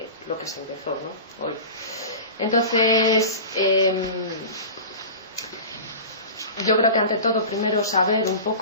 lo que se empezó, ¿no? Hoy. Entonces yo creo que ante todo primero saber un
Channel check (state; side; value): inverted; both; correlation -0.34